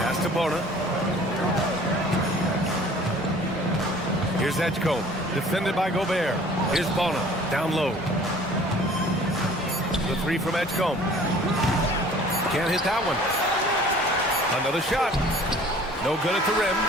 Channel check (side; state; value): both; normal; correlation 0.50